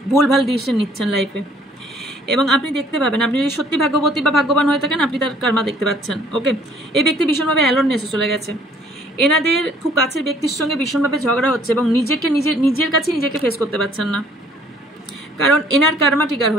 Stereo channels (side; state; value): both; normal; correlation 0.59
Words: ভুলভাল ডিসিশন নিচ্ছেন লাইফে, এবং আপনি দেখতে পাবেন, আপনি যদি সত্যি ভাগ্যবতী বা ভাগ্যবান হয়ে থাকেন, আপনি তার কার্মা দেখতে পাচ্ছেন। ওকে, এই ব্যক্তি ভীষণভাবে অ্যালোননেসে চলে গেছে। এনাদের খুব কাছের ব্যক্তির সঙ্গে ভীষণভাবে ঝগড়া হচ্ছে এবং নিজের কাছে নিজেকে ফেস করতে পারছেন না, কারণ এনার কার্মা ট্রিগার